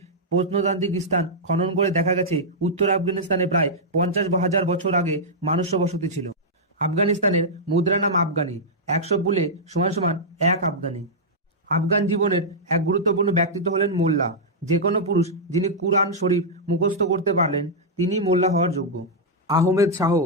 প্রত্নতান্ত্রিক স্থান খনন করে দেখা গেছে উত্তর আফগানিস্তানে প্রায় 50,000 বছর আগে মানুষ্য বসতি ছিল। আফগানিস্তানের মুদ্রা নাম আফগানি। 100 পুলে = 1 আফগানি। আফগান জীবনের এক গুরুত্বপূর্ণ ব্যক্তিত্ব হলেন মোল্লা। যে কোনো পুরুষ যিনি কুরআন শরীফ মুখস্থ করতে পারলেন তিনি মোল্লা হওয়ার যোগ্য। আহমেদ শাহ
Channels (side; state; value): both; normal; correlation -0.08